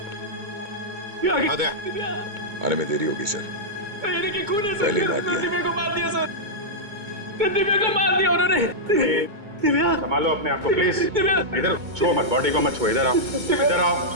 दिव्या! आद्या। दिव्या! आने में देरी होगी सर। सर ये देखिए खून है सर। पहले ही मार दिया। दिव्या को मार दिया सर। दिव्या को मार दिया उन्होंने। दिव्या! संभालो अपने आप को प्लीज। दिव्या! इधर छुओ मत, बॉडी को मत छुओ। इधर आओ, इधर आओ।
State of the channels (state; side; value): late; left; 2.2 ms